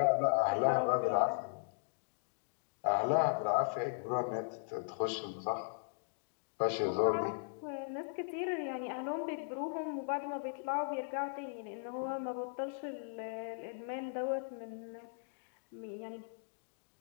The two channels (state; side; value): silent; right; digital silence